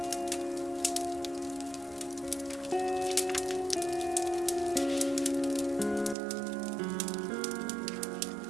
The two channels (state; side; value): drops out; left; at 6.2 s